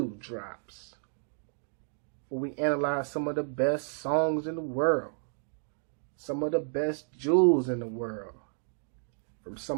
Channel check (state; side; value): silent; left; digital silence